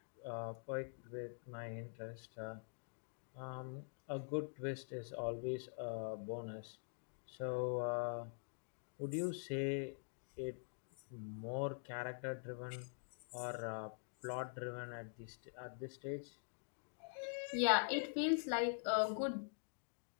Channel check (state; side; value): silent; right; digital silence